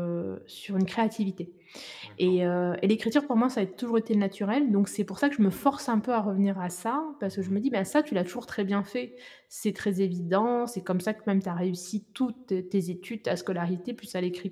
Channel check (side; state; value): both; identical; correlation 1.00